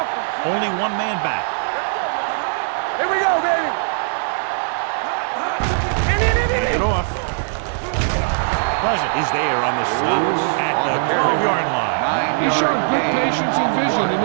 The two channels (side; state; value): left; silent; 62 dB below the other